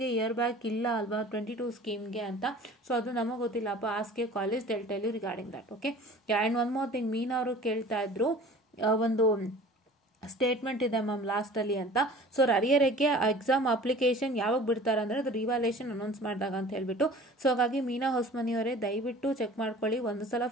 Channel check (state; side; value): normal; both; correlation 0.44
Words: ಇಯರ್ ಬ್ಯಾಕ್ ಇಲ್ಲ ಅಲ್ವಾ 22 ಸ್ಕೀಮ್ಗೆ ಅಂತ. ಸೊ ಅದು ನಮಗೆ ಗೊತ್ತಿಲ್ಲಪ್ಪ, ask college they'll tell you regarding that. Okay, and one more thing, Meena ಅವರು ಕೇಳ್ತಾ ಇದ್ರು, ಒಂದು ಸ್ಟೇಟ್ಮೆಂಟ್ ಇದೆ ಮ್ಯಾಮ್ ಲಾಸ್ಟಲ್ಲಿ ಅಂತ. ಸೊ ಅರಿಯರಿಗೆ ಎಕ್ಸಾಮ್ ಅಪ್ಲಿಕೇಶನ್ ಯಾವಾಗ ಬಿಡ್ತಾರೆ ಅಂದರೆ ಅದು ರಿವ್ಯಾಲ್ಯೂಯೇಷನ್ ಅನೌನ್ಸ್ ಮಾಡಿದಾಗ ಅಂತ ಹೇಳ್ಬಿಟ್ಟು. ಸೊ ಹಾಗಾಗಿ ಮೀನಾ ಹೊಸ್ಮನಿಯವರೇ ದಯವಿಟ್ಟು ಚೆಕ್ ಮಾಡ್ಕೊಳ್ಳಿ. ಒಂದು ಸಲ